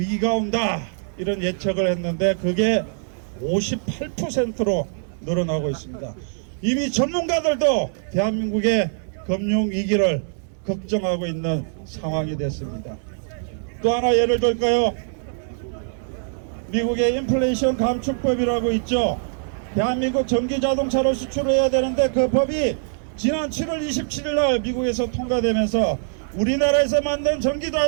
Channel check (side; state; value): left; silent; digital silence